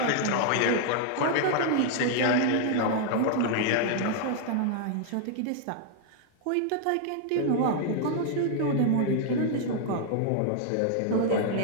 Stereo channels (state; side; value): different; both; correlation 0.00